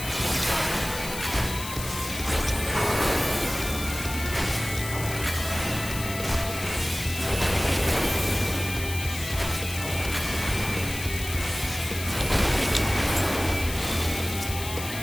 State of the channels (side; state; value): left; noise; hiss, 9 dB below the sound